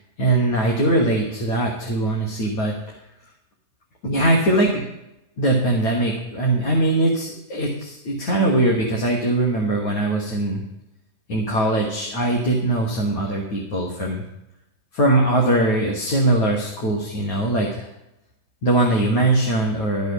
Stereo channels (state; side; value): late; right; 9.2 ms